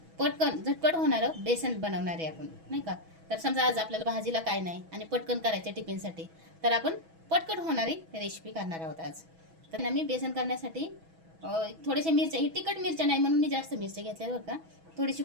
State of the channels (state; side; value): late; left; 6.1 ms